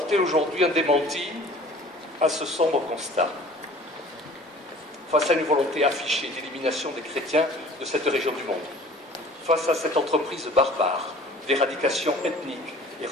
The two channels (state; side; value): normal; both; correlation 0.47